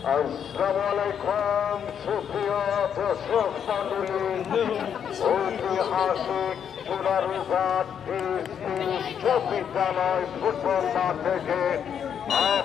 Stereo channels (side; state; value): right; quieter; 8.2 dB